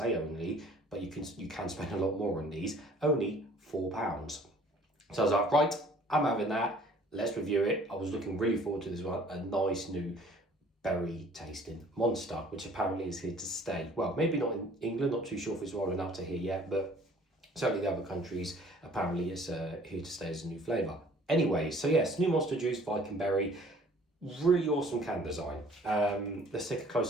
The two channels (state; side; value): normal; both; correlation 0.54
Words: only, but you can spend a lot more on these, only £4. So I was like, right, I'm having that. Let's review it. I was looking really forward to this one. A nice new berry tasting monster, which apparently is here to stay. Well, maybe not in England, not too sure if it's rolling up to here yet, but certainly the other countries, apparently it's here to stay as a new flavour. Anyway, so yes, new Monster Juice Viking Berry. Really awesome can design. Let's take a